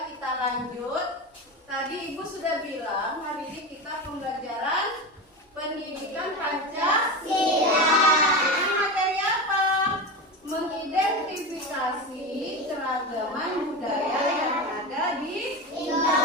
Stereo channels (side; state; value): both; normal; correlation 0.22